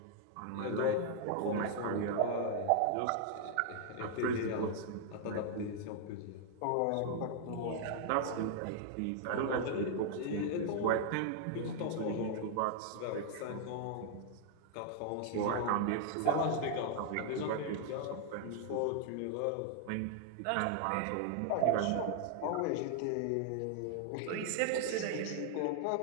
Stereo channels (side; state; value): both; different; correlation -0.01